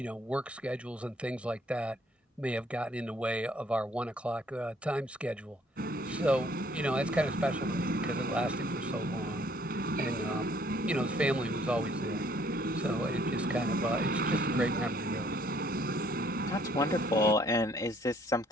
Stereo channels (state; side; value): normal; both; correlation 0.62